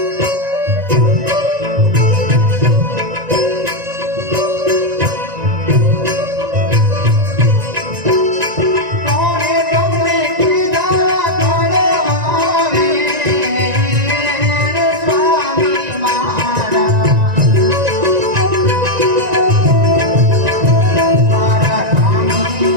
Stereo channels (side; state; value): left; late; 1.9 ms